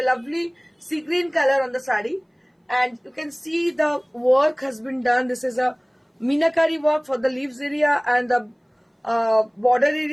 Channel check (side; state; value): both; identical; correlation 1.00